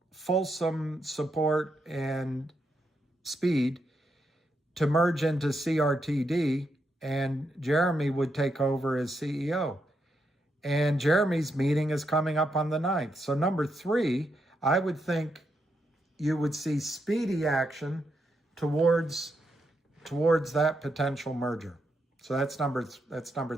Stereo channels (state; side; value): normal; both; correlation 0.81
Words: fulsome support and speed, to merge into CRTD, and Jeremy would take over as CEO. And Jeremy's meeting is coming up on the 9th. So number 3, I would think you would see speedy action towards that potential merger. So that's number